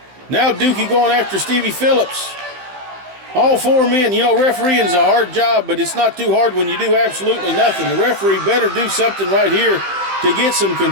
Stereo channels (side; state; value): left; late; 15 ms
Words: Now Dookie going after Stevie Phillips. All four men, refereeing is a hard job, but it's not too hard when you do absolutely nothing. The referee better do something right here to get some